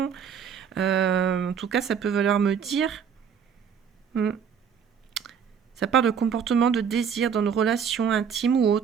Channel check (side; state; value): left; quieter; 7.4 dB